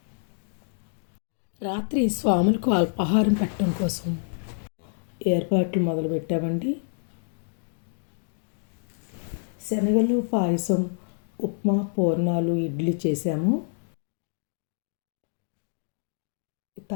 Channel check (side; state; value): right; silent; digital silence